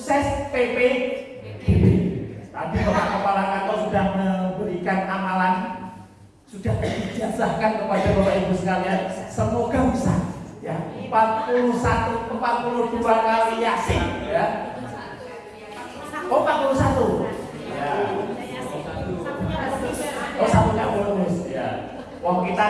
PPDB. Tadi Bapak Kepala Kantor sudah memberikan amalan, sudah dijazahkan kepada Bapak Ibu sekalian. Semoga bisa. Ya, 42 kali Yasin. Ya. Oh, 41. Ya. Oh, satunya bonus ya. Wong kita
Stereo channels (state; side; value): identical; both; correlation 1.00